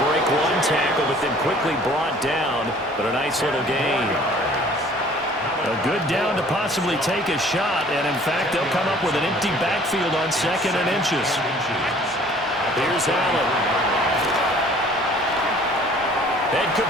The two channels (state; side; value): normal; both; correlation 0.53